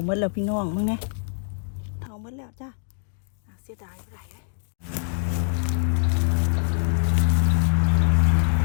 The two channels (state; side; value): silent; right; digital silence